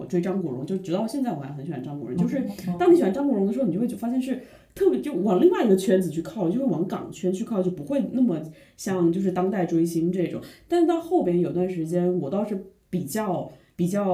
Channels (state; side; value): identical; both; correlation 1.00